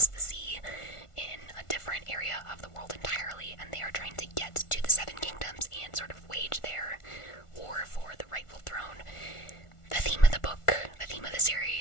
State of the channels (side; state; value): right; late; 1.4 ms